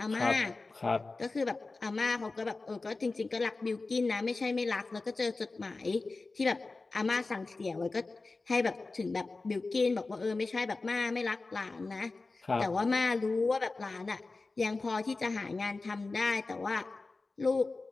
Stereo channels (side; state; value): right; quieter; 3.6 dB